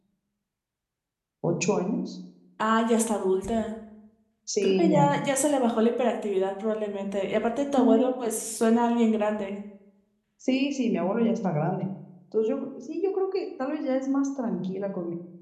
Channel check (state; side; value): identical; both; correlation 1.00